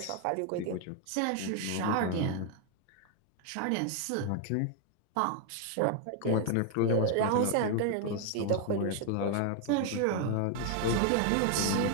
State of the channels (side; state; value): both; different; correlation 0.00